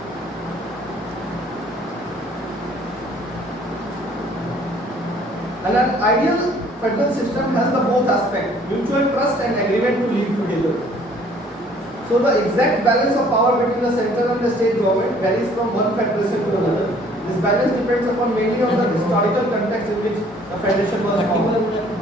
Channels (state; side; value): normal; both; correlation 0.57